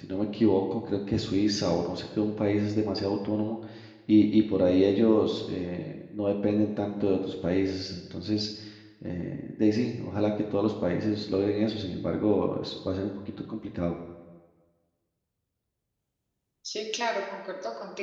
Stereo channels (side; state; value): both; identical; correlation 1.00